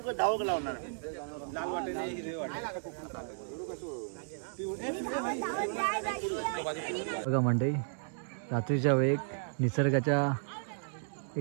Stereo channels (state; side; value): silent; left; digital silence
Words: बघा मंडळी, रात्रीच्या वेळी निसर्गाच्या